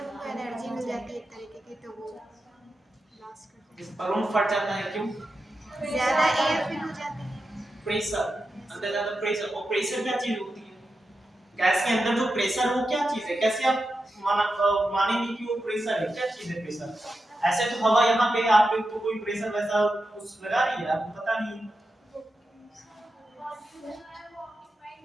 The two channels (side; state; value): both; normal; correlation 0.89